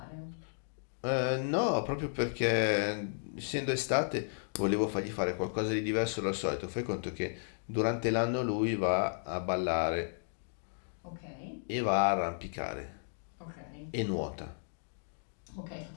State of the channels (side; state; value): right; silent; digital silence